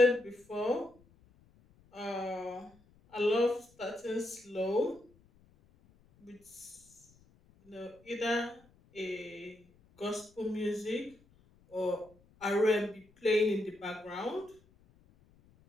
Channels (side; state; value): left; noise; rumble, 29 dB below the sound